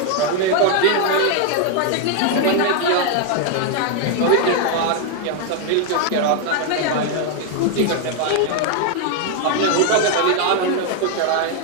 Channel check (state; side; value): different; both; correlation 0.00